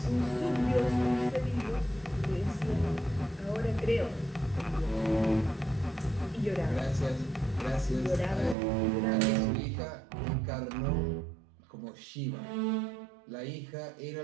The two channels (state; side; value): drops out; left; at 8.6 s